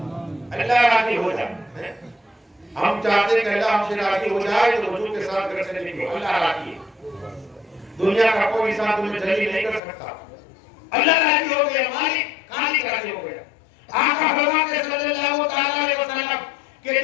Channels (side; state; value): right; drops out; at 9.8 s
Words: اللہ راضی ہو جائے۔ ہم چاہتے ہیں کہ اللہ ہم سے راضی ہو جائے تو وضو کے ساتھ گھر سے نکلو، اللہ راضی ہے۔ دنیا کا کوئی انسان تمہیں ذلیل نہیں کر سکتا، اللہ راضی ہو گیا، مالک خالق راضی ہو گیا۔ آقا فرماتے ہیں صلی اللہ تعالیٰ علیہ وسلم کہ